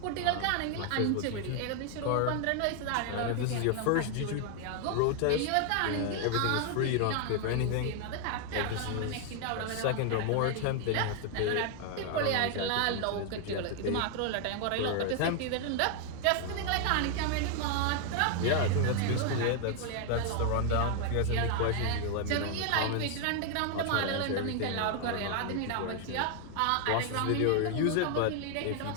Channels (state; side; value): different; both; correlation 0.00